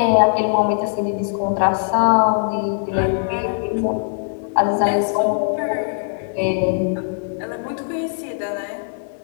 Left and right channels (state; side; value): silent; right; 65 dB below the other